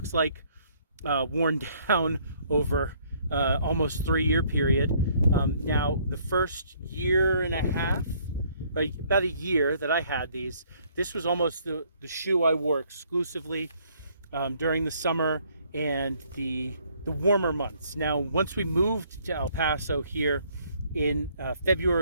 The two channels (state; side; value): inverted; both; correlation -0.63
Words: like, worn down over almost 3-year period. Now, the first year and a half, about a year that I had these, this was almost the shoe I wore exclusively during the summer and the warmer months. Now, once we moved to El Paso here in